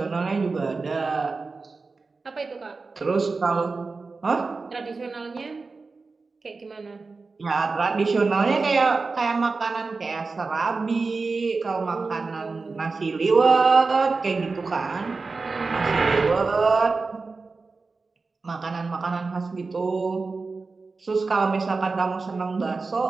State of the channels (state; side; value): quieter; left; 4.1 dB